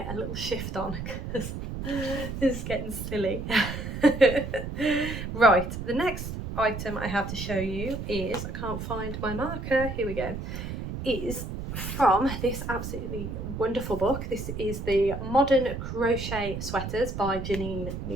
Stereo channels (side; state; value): right; noise; rumble, 6 dB below the sound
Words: a little shift on because this is getting silly. Right, the next item I have to show you is, I can't find my marker, here we go, is from this absolutely wonderful book. This is the Modern Crochet Sweaters by Janine